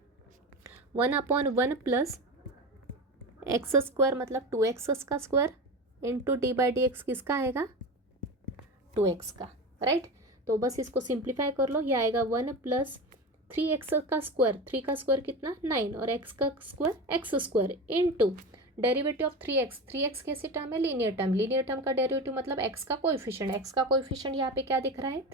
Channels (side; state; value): both; normal; correlation 0.25